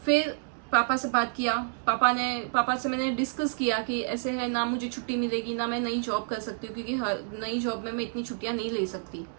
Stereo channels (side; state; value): left; silent; digital silence